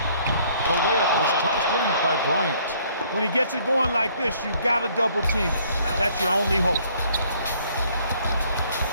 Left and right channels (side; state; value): both; inverted; correlation -0.62